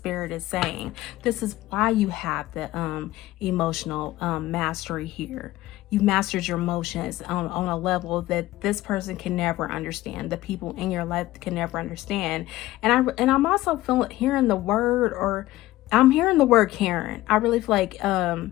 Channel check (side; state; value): right; quieter; 16.6 dB